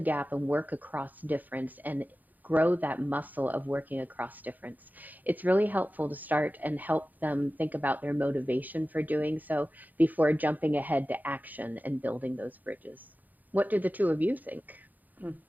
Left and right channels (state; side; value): late; left; 0.083 ms